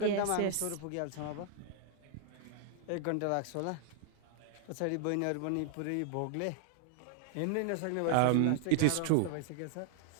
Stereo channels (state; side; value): different; both; correlation 0.00